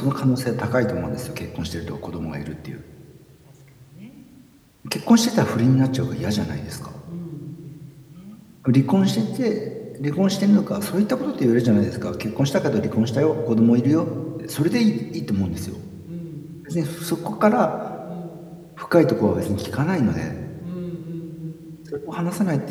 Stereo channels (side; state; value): both; identical; correlation 1.00